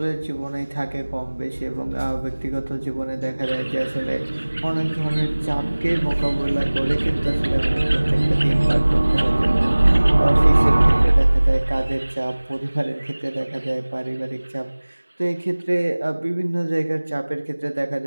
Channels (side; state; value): both; inverted; correlation -1.00